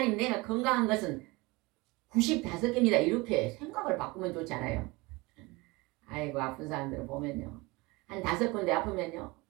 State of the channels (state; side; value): quieter; left; 23.7 dB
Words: 내가 건강한 것은 95개입니다 이렇게 생각을 바꾸면 좋잖아요. 아이고 아픈 사람들을 보면요, 한 5군데 아프면요